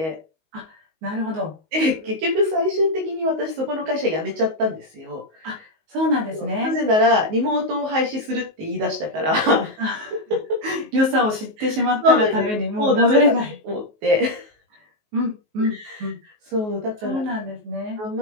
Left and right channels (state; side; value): late; left; 19 ms